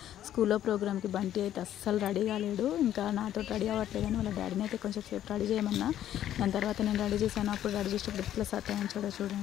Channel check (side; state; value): right; quieter; 11.6 dB